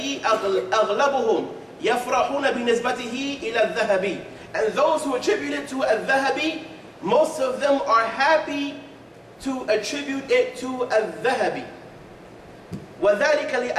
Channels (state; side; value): identical; both; correlation 1.00